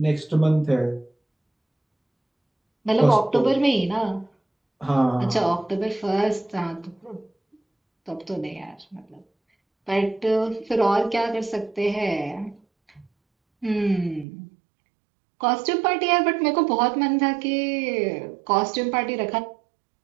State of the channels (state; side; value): drops out; left; at 14.2 s